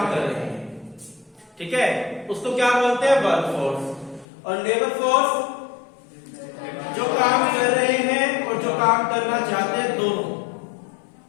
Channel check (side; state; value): right; drops out; at 4.2 s